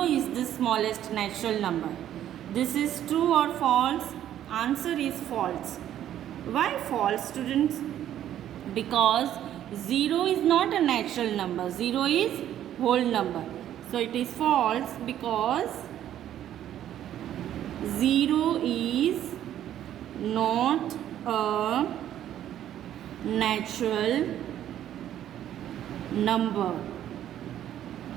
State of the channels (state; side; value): quieter; left; 11.4 dB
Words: is the smallest natural number. This is true or false? Answer is false. Why false, students? Because 0 is not a natural number. 0 is whole number. So it is false because 0 is not a natural number.